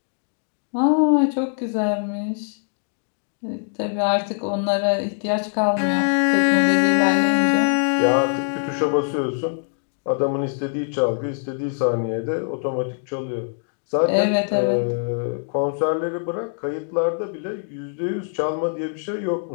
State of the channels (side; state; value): right; silent; digital silence